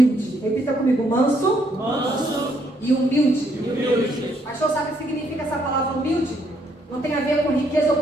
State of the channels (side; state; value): both; normal; correlation 0.71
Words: Repita comigo, manso e humilde. Pastor, sabe o que significa essa palavra humilde? Não tem a ver com riqueza ou